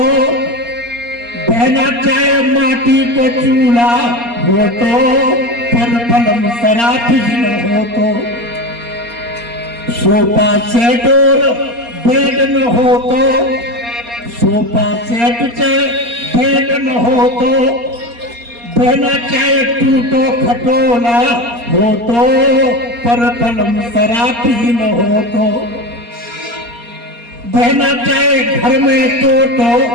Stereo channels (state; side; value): late; left; 4.3 ms